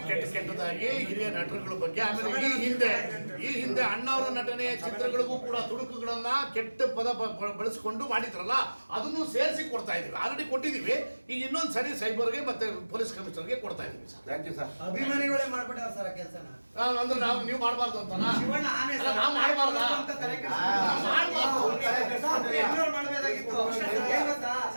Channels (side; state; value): both; inverted; correlation -1.00